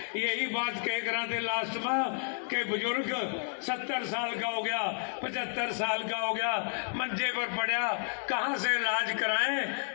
यही बात कह रहे थे लास्ट में कि बुजुर्ग 70 साल का हो गया, 75 साल का हो गया, मंजे पर पड़ा, कहाँ से इलाज कराएं।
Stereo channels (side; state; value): right; silent; digital silence